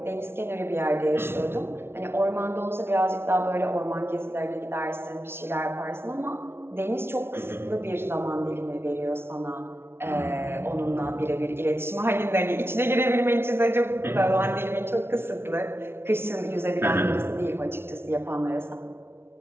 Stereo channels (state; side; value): late; left; 0.12 ms